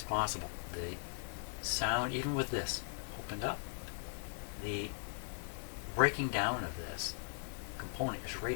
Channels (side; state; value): right; silent; 52 dB below the other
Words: possible. The sound, even with this opened up, the breaking down of this component is